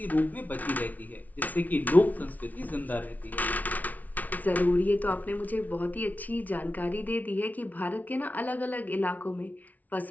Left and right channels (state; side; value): late; right; 0.075 ms